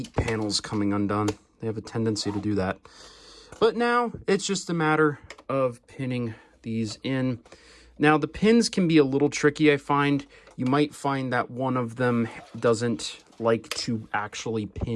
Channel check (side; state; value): both; identical; correlation 1.00